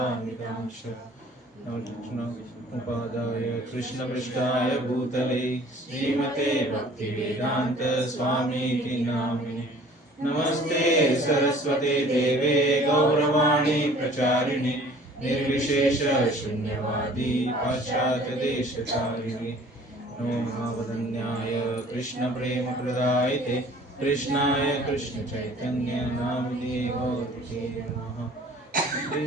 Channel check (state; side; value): normal; both; correlation 0.51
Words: उपादाय कृष्णपृष्ठाय भूतले श्रीमते भक्तिवेदान्त स्वामीति नामिने। नमस्ते सरस्वते देवे गौरवाणी प्रचारिणे निर्विशेष शून्यवादी पाश्चात्य देशचारिणे। नमो महावदन्याय कृष्ण प्रेम प्रदायते कृष्णाय कृष्ण चैतन्य नामिने गौरते नमः।